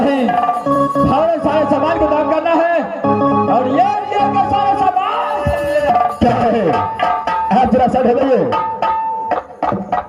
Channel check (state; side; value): identical; both; correlation 1.00